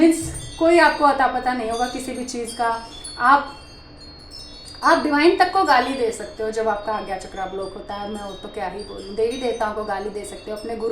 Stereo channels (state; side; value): identical; both; correlation 1.00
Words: कोई आपको अता पता नहीं होगा किसी भी चीज़ का। आप डिवाइन तक को गाली दे सकते हो जब आपका आज्ञा चक्रा ब्लॉक होता है। मैं वो तो क्या ही बोलूँ, देवी देवताओं को गाली दे सकते हो, अपने